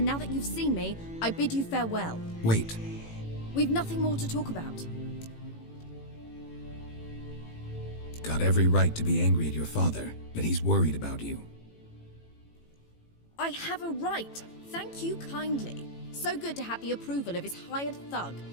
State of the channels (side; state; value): right; late; 18 ms